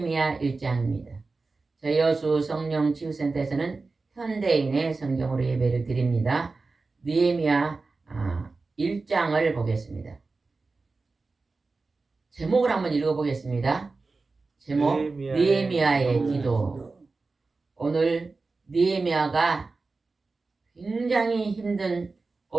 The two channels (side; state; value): left; quieter; 3.8 dB